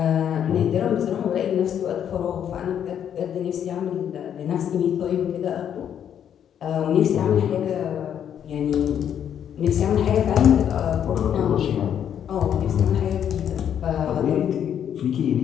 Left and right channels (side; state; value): right; quieter; 9.2 dB